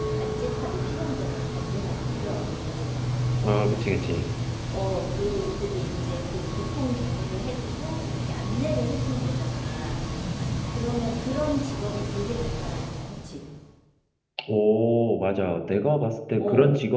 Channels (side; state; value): both; identical; correlation 1.00